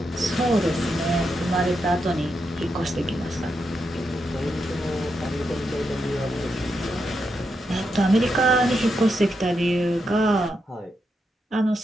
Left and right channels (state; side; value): normal; both; correlation 0.84